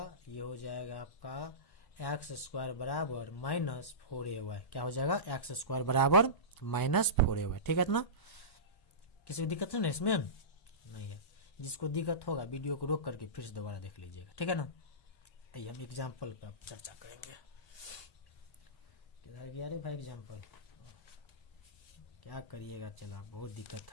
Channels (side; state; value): right; late; 1.1 ms